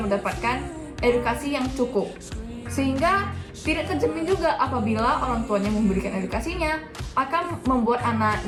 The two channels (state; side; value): identical; both; correlation 1.00